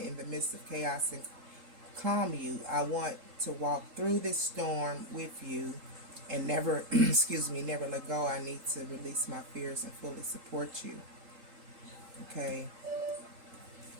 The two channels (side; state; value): left; late; 3.8 ms